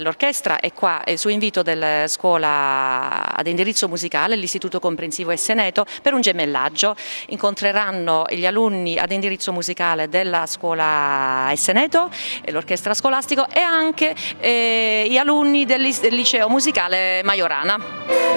è qua su invito della scuola ad indirizzo musicale, l'Istituto Comprensivo Esseneto, per un gemellaggio. Incontreranno gli alunni ad indirizzo musicale della scuola Esseneto, l'orchestra scolastico, e anche gli alunni del liceo musicale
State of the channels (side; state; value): both; inverted; correlation -1.00